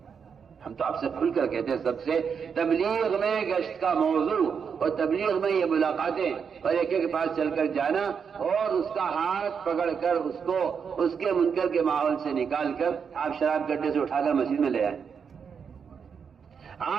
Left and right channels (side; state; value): left; quieter; 6.5 dB